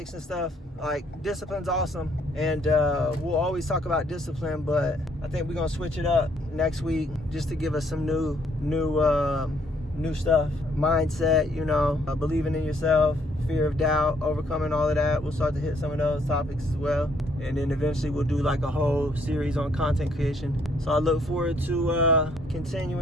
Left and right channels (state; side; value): normal; both; correlation 0.67